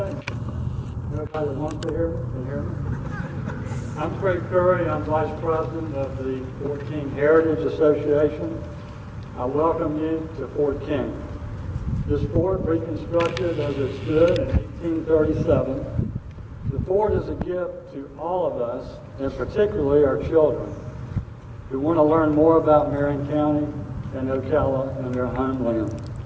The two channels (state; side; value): identical; both; correlation 1.00